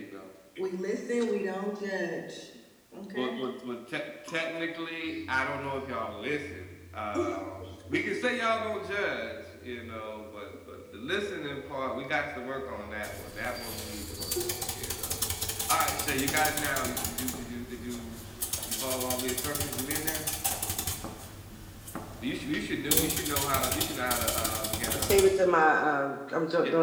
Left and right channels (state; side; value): identical; both; correlation 1.00